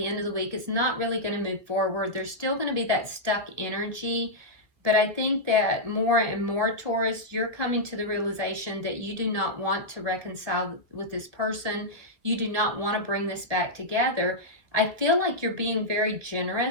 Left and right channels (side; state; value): left; late; 1.8 ms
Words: end of the week is not really going to move forward. There's still going to be that stuck energy. But I think that more and more, Taurus, you're coming to the realization that you do not want to reconcile with this person. You do not want to bring this back together. I feel like you're being very